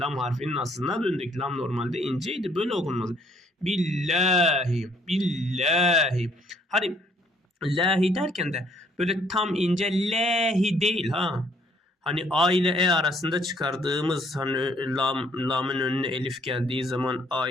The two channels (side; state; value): both; normal; correlation 0.64